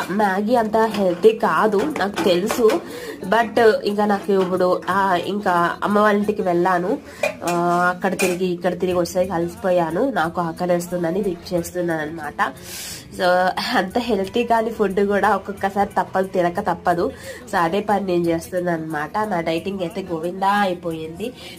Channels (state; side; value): identical; both; correlation 1.00